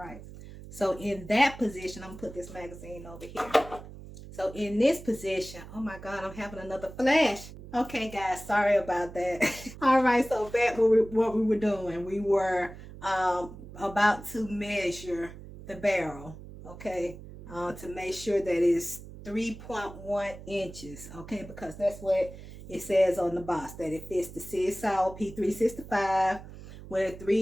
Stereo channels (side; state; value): right; noise; hum, 15 dB below the sound